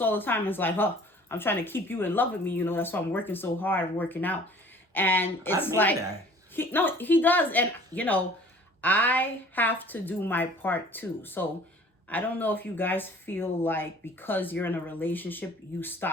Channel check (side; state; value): both; normal; correlation 0.50